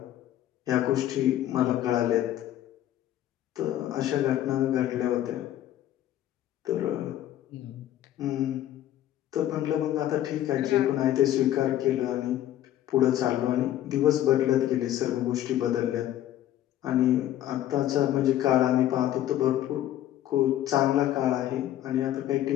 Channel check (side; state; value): right; quieter; 12.6 dB